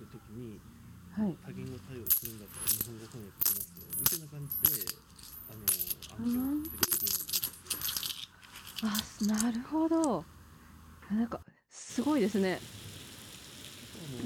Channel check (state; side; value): identical; both; correlation 1.00